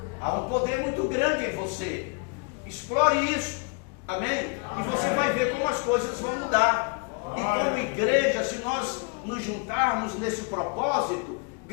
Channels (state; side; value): quieter; right; 33.9 dB